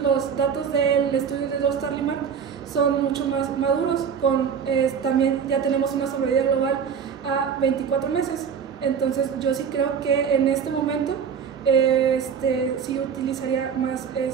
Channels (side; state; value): left; quieter; 7.1 dB